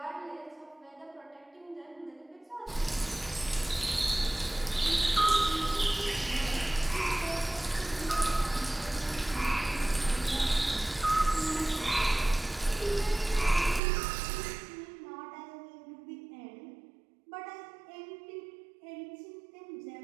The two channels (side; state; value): left; drops out; at 13.8 s